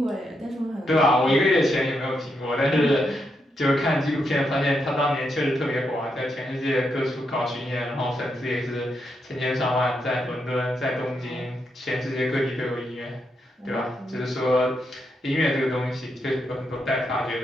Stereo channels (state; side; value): normal; both; correlation 0.81